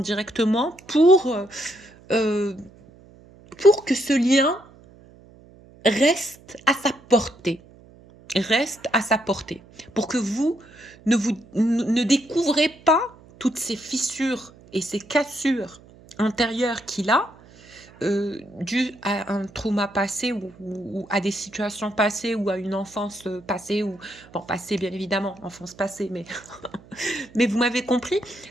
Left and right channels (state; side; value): noise; right; hum, 24 dB below the sound